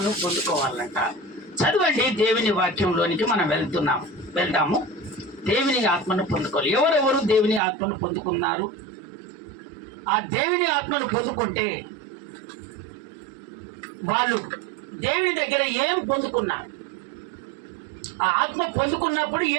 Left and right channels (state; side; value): drops out; left; at 7.6 s